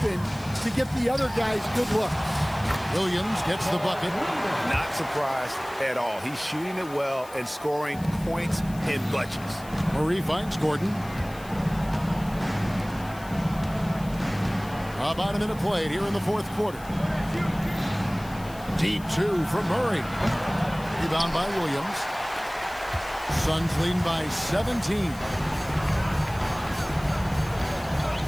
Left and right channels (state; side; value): noise; left; hiss, 20 dB below the sound